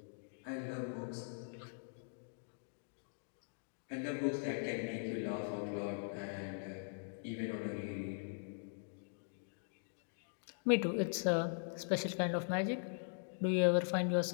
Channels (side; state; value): right; silent; digital silence